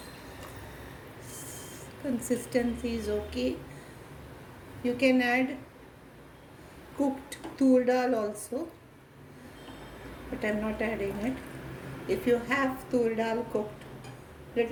Consistency is okay. You can add cooked tur dal also, but I am not adding it. If you have tur dal cooked,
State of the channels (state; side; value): identical; both; correlation 1.00